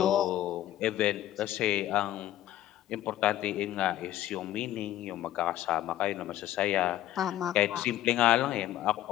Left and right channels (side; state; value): right; quieter; 13.3 dB